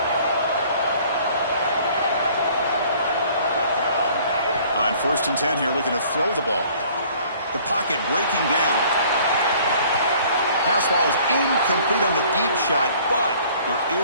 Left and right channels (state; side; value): inverted; both; correlation -0.55